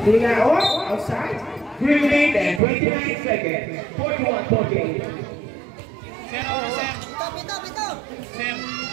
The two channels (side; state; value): left; drops out; at 2.6 s